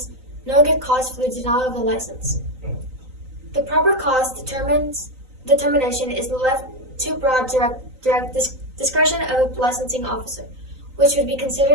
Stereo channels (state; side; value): late; left; 3.9 ms